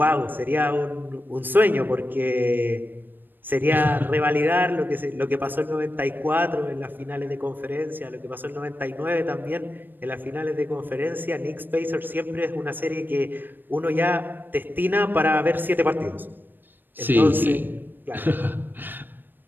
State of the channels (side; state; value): left; late; 0.093 ms